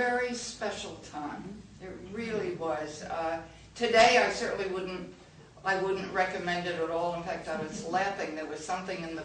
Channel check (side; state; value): both; identical; correlation 1.00